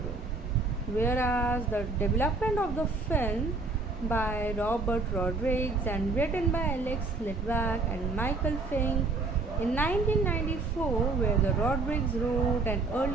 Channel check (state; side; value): quieter; left; 3.7 dB